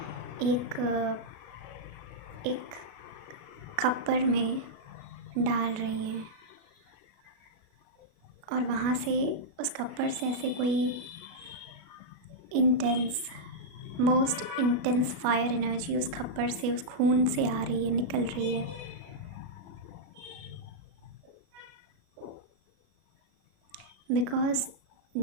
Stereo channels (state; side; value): late; left; 37 ms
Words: एक खप्पर में डाल रही हैं, और वहाँ से उस खप्पर से ऐसे कोई मोस्ट इंटेंस फायर एनर्जी उस खप्पर से, उस खून से आ रही है, निकल रही है. बिकॉज़